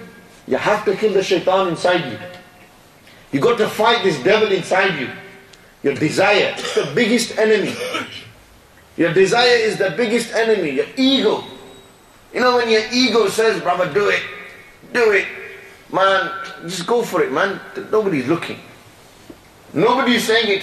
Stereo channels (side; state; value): both; identical; correlation 1.00